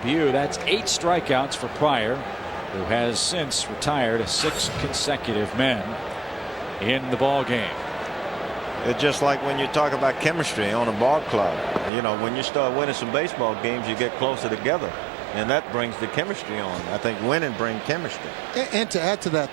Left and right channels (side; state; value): left; drops out; at 11.9 s